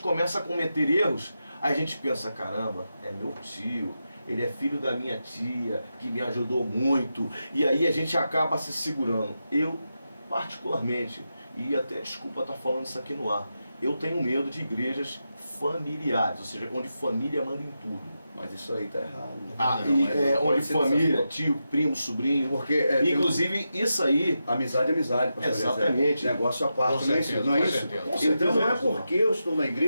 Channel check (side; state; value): both; inverted; correlation -0.88